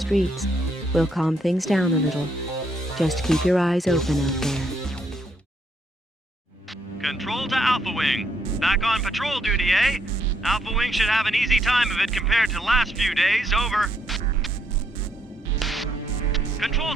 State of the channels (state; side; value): normal; both; correlation 0.73